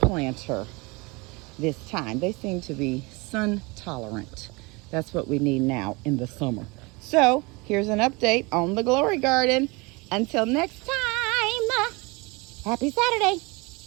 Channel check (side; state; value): left; quieter; 26.4 dB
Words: planter this time. They seem to be sun tolerant. That's what we need now in the summer. So here's an update on the Glory garden. Until next time, happy Saturday.